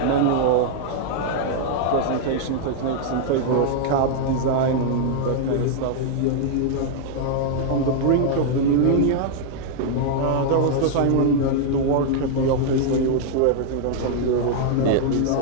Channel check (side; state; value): both; different; correlation 0.00